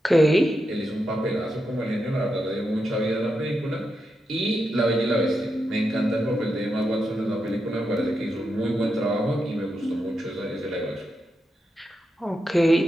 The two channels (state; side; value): normal; both; correlation 0.86